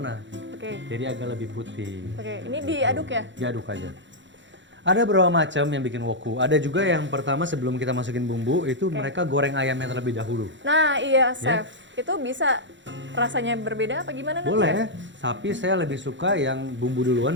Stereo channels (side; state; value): left; late; 0.54 ms